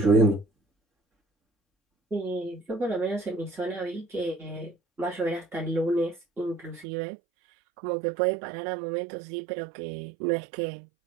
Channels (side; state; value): left; drops out; at 6.9 s